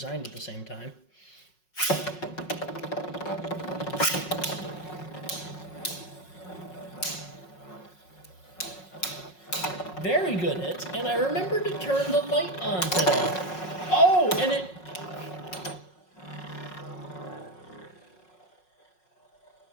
at the same time. Very good hits, and I remembered to turn the light on today. Oh, and it...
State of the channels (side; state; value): right; late; 5.5 ms